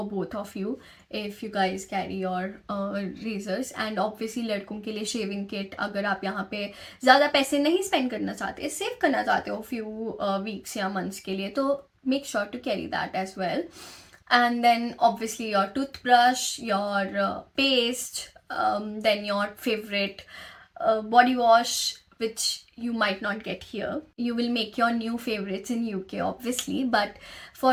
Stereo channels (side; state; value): both; identical; correlation 1.00